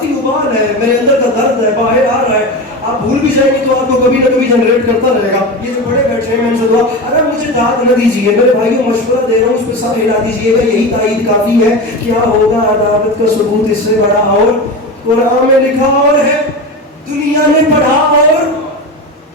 ابال ہے، میرے اندر کا درد ہے، باہر آ رہا ہے. آپ بھول بھی جائیں گے تو آپ کو کبھی نہ کبھی جنریٹ کرتا رہے گا. یہ جو بڑے بیٹھے ہیں میں ان سے دعا، اگر مجھے داد نہ دیجیے، میرے بھائیوں مشورہ دے رہا ہوں، اس پہ سب ہلا دیجیے گا، یہی تائید کافی ہے. کیا ہوگا عداوت کا ثبوت اس سے بڑا، اور قرآن میں لکھا اور ہے دنیا نے پڑھا. اور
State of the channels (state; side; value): normal; both; correlation 0.24